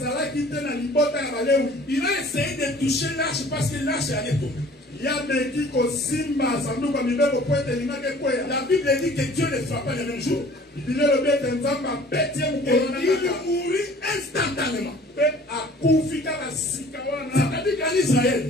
il a essayé de toucher l'arche parce que l'arche allait tomber. La Bible dit que Dieu ne frappa le même jour. Et il mourut instantanément. C'est-à-dire qu'en Israël,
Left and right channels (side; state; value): both; normal; correlation 0.50